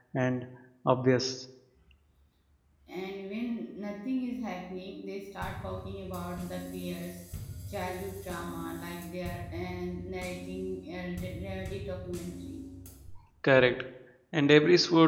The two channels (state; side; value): identical; both; correlation 1.00